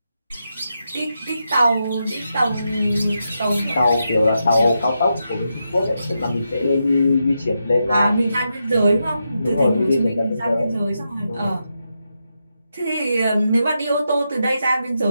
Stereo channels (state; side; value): inverted; both; correlation -0.85